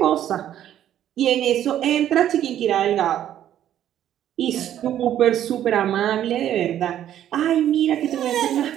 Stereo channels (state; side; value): quieter; left; 11.2 dB